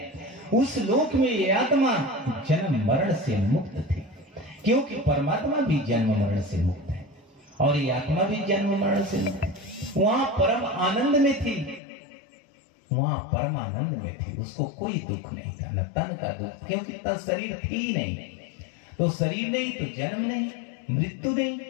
उस लोक में ये आत्मा जन्म मरण से मुक्त थी, क्योंकि परमात्मा भी जन्म मरण से मुक्त है और ये आत्मा भी जन्म मरण से मुक्त है। वहां परम आनंद में थी, वहां परम आनंद में थी। उसको कोई दुख नहीं था, न तन का दुख, क्योंकि तन शरीर थी ही नहीं। तो शरीर नहीं तो जन्म नहीं, मृत्यु नहीं,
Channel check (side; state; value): right; drops out; at 11.8 s